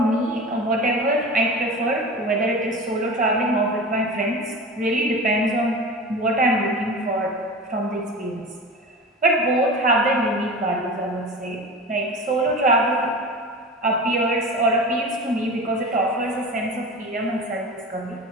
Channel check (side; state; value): both; normal; correlation 0.32